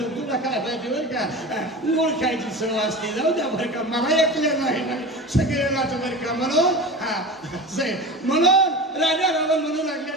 काय पाहिजे बरं का. गुळ खायची सवय असते. जाऊ द्या बरं का. मला ऐकलं नाही सगळ्यालाच बरं का. म्हणून राजा रावण म्हणू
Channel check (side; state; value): both; normal; correlation 0.30